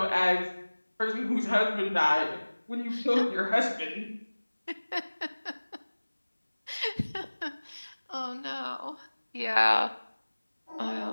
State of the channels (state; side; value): inverted; both; correlation -1.00